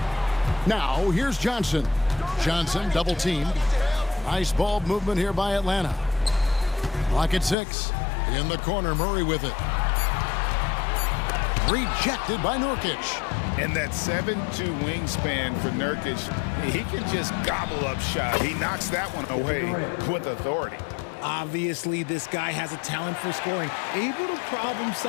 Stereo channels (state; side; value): drops out; right; at 7.6 s